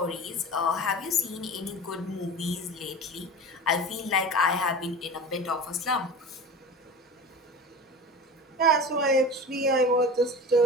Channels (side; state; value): both; normal; correlation 0.33